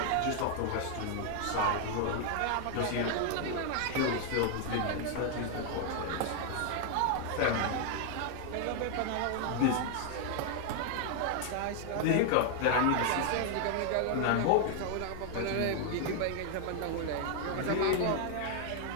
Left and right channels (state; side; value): different; both; correlation 0.00